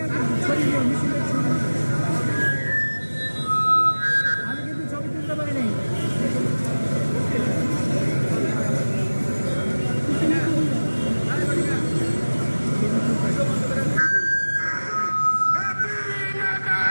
আমি কিন্তু ছবি তুলতে পারি নাই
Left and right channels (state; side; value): inverted; both; correlation -1.00